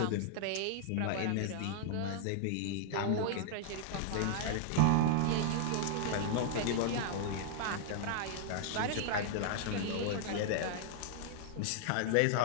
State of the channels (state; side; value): different; both; correlation -0.01